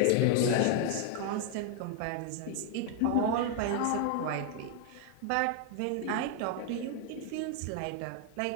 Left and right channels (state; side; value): different; both; correlation 0.00